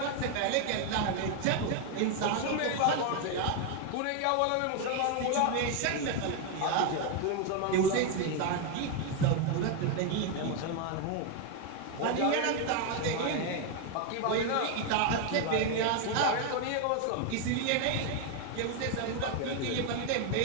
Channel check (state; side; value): different; both; correlation 0.01